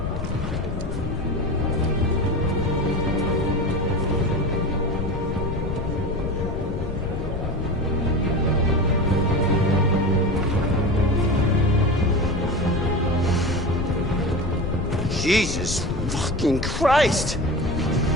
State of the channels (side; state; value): left; noise; rumble, 4 dB below the sound